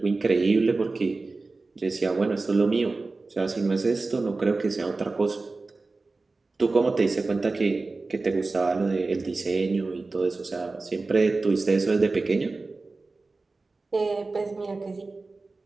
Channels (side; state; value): left; quieter; 3.6 dB